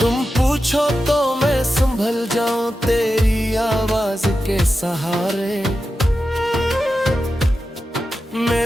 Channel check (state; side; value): normal; both; correlation 0.91